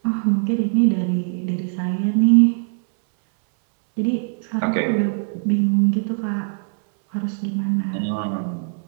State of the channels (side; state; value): left; silent; 65 dB below the other